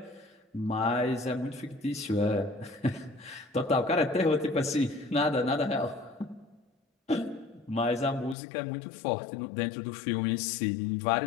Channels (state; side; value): drops out; right; at 8.3 s